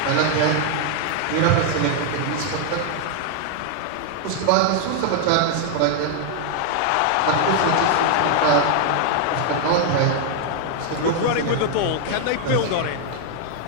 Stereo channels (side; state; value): both; different; correlation 0.00